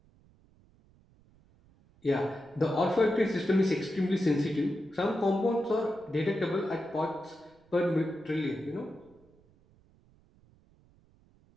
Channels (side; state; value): right; noise; rumble, 30 dB below the sound